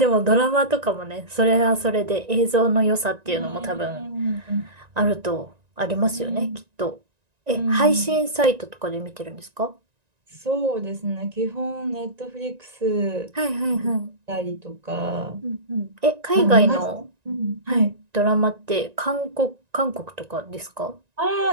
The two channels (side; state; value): left; late; 1.9 ms